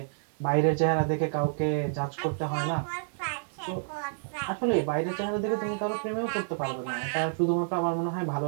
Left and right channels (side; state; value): left; silent; 58 dB below the other